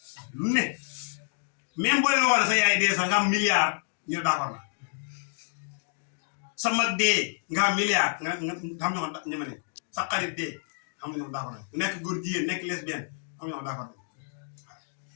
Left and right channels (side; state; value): right; silent; digital silence